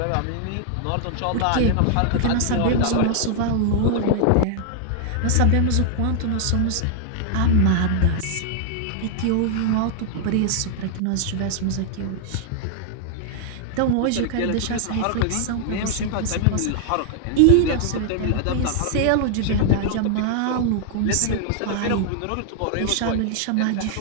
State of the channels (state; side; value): different; both; correlation 0.00